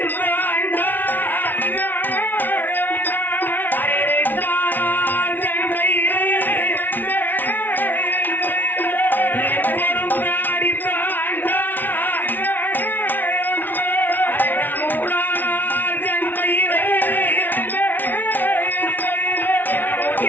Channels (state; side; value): late; right; 0.089 ms